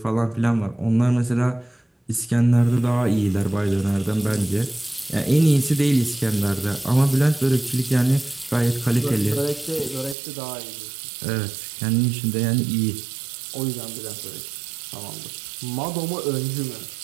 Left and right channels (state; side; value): drops out; left; at 10.2 s